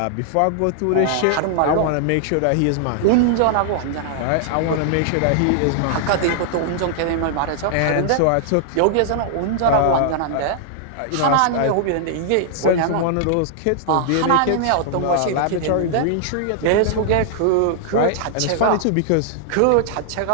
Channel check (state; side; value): different; both; correlation -0.01